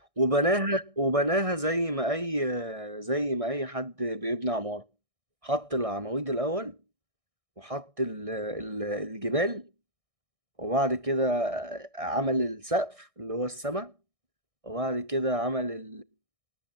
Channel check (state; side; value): late; left; 1.6 ms